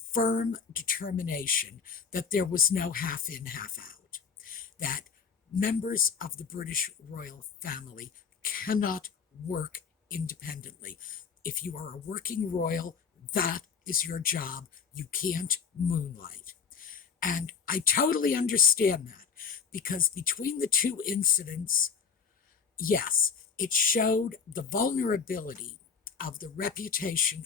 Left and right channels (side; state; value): right; quieter; 6.2 dB